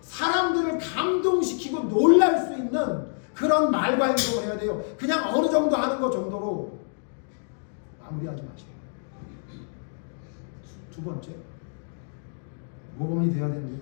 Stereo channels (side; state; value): right; silent; digital silence